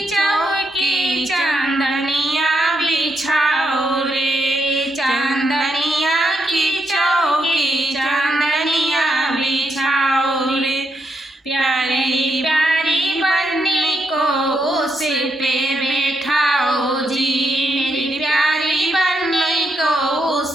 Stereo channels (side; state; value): both; normal; correlation 0.80